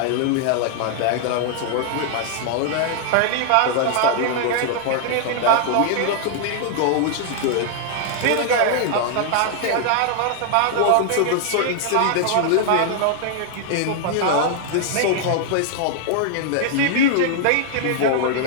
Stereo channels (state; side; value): different; both; correlation -0.01